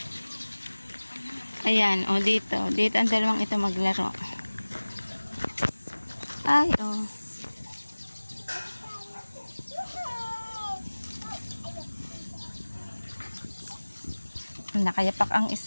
Ayan, o dito. Dito ang dalawang ito maglaro. Ay, oh. Nakayapak ang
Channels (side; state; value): both; inverted; correlation -1.00